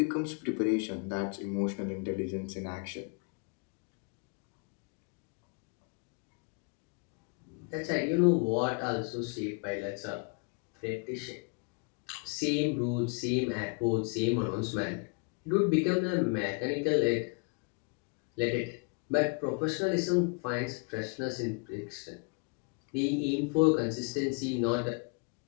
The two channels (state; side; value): quieter; right; 34.2 dB